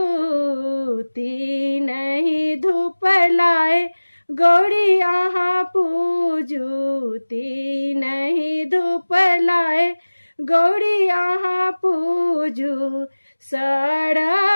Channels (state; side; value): inverted; both; correlation -1.00